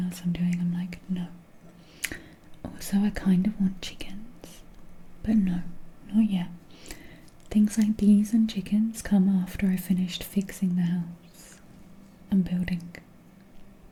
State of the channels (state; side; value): identical; both; correlation 1.00